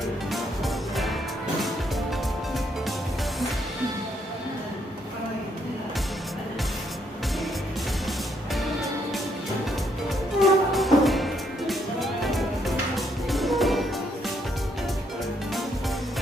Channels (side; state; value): both; normal; correlation 0.73